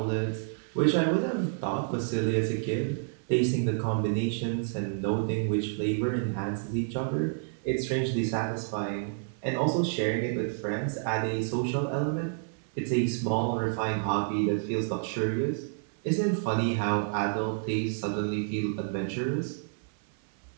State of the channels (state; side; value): silent; left; 58 dB below the other